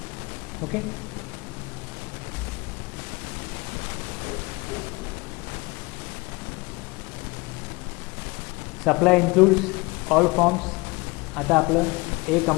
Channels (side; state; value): right; quieter; 25.0 dB